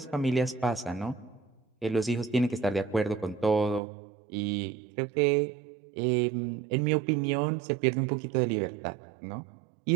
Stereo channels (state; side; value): drops out; left; at 3.8 s